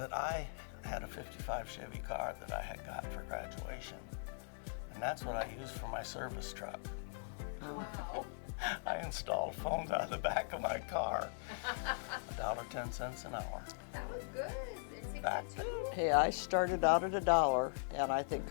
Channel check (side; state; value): right; silent; digital silence